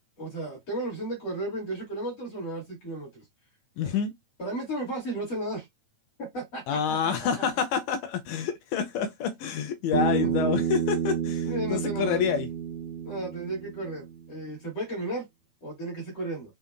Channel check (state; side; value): late; right; 9.0 ms